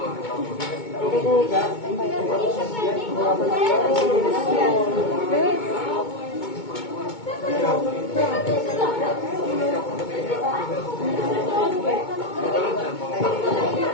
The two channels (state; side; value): late; right; 2.2 ms